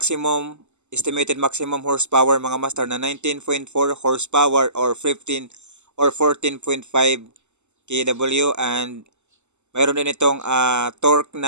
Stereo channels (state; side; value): late; left; 0.83 ms